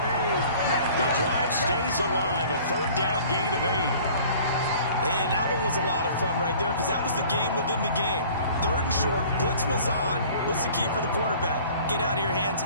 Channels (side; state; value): both; inverted; correlation -0.49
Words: The drive stays alive, a third down gain of 8. And that one was a lot of fun right there because that was the game within the game. 3rd and short, blitz was on. What's the key for the quarterback? Get out of your hands